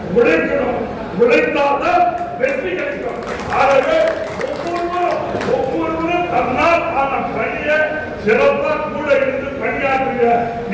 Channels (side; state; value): both; identical; correlation 1.00